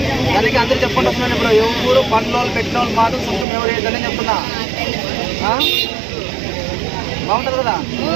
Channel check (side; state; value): left; drops out; at 3.5 s